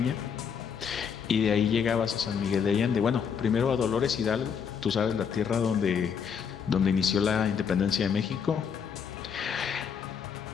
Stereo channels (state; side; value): quieter; right; 7.0 dB